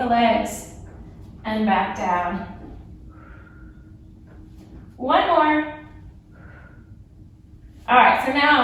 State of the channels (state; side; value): identical; both; correlation 1.00